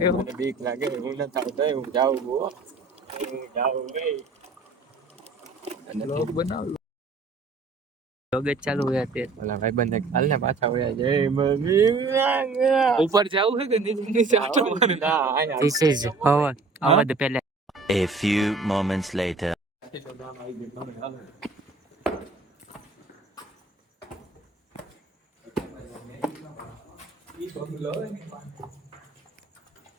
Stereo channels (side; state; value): left; quieter; 3.9 dB